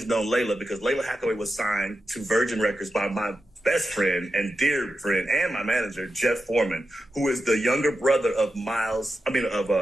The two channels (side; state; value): both; normal; correlation 0.89